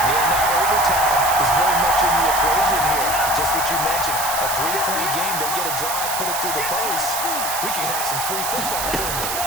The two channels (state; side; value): noise; right; hiss, 3 dB below the sound